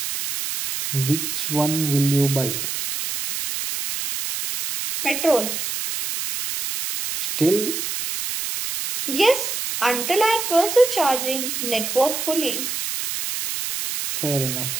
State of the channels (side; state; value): right; noise; hiss, 4 dB below the sound